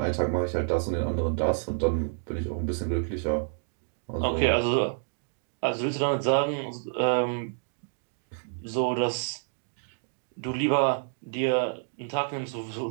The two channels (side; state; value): left; silent; digital silence